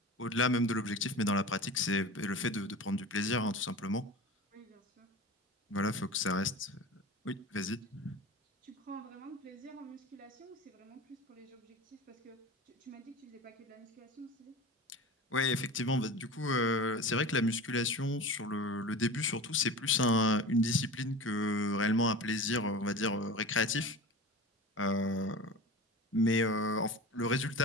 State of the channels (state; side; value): normal; both; correlation 0.32